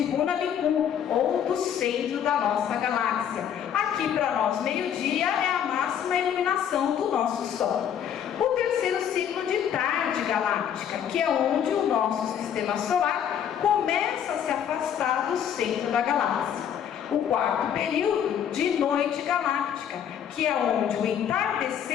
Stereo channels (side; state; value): right; quieter; 9.0 dB